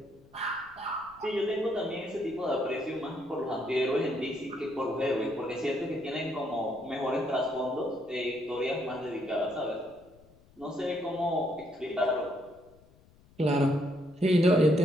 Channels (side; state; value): left; noise; rumble, 28 dB below the sound